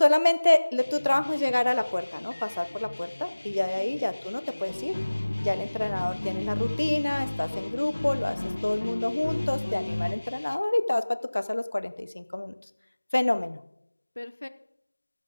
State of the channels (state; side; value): inverted; both; correlation -1.00